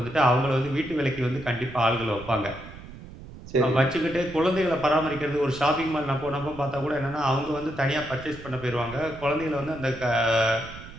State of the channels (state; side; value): noise; right; rumble, 15 dB below the sound